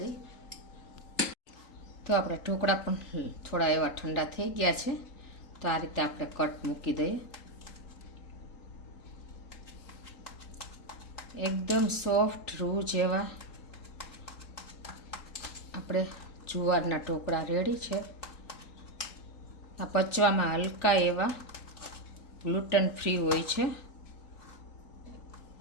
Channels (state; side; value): late; right; 3.4 ms